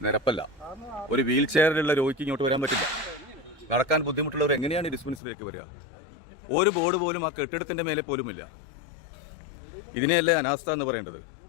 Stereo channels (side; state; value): right; drops out; at 5.2 s